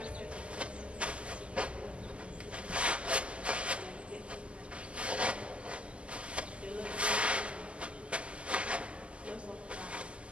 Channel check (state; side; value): late; left; 0.055 ms